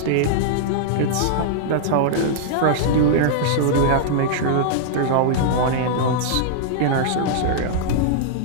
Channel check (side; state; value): both; different; correlation -0.01